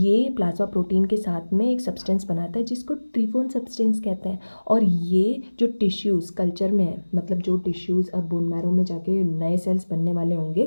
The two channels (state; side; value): inverted; both; correlation -1.00